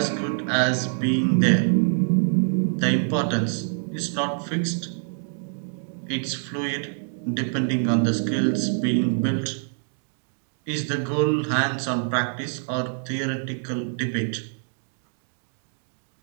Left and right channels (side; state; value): left; silent; digital silence